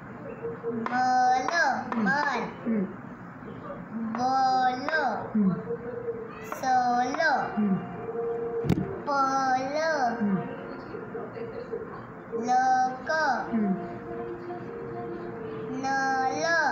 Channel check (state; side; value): identical; both; correlation 1.00